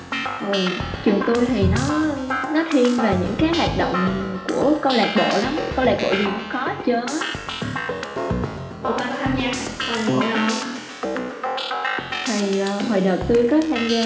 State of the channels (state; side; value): identical; both; correlation 1.00